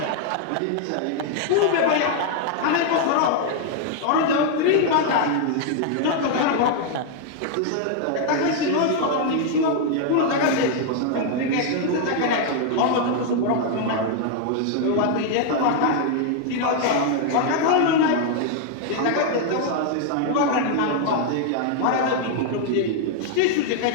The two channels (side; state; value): both; different; correlation 0.00